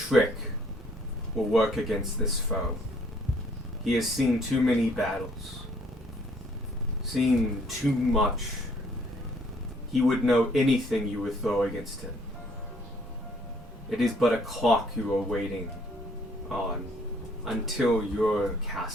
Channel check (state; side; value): normal; both; correlation 0.63